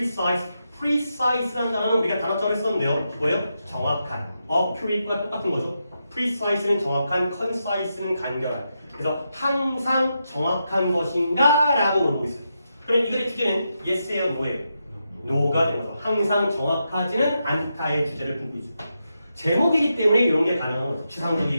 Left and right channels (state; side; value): inverted; both; correlation -0.85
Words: precise라는 단어는 우리가 단어처럼 했었는데요. 뭐예요? 정확한. accurate과 똑같은 거죠. precise는 정확한, concise는 간결한. 그래서 항상 정확한 것인가? 라고 물어보고 있어요. 그럼 이 글의 주제는 yes예요, no예요? no가 되는 거죠. 항상 정확하지는 않다의 주제를 품고 있죠. 제목이기 때문에 이런 게 가능한 거죠.